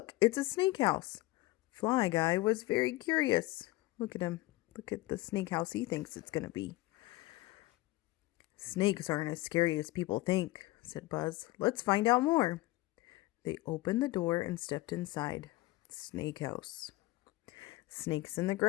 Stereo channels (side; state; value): right; quieter; 19.2 dB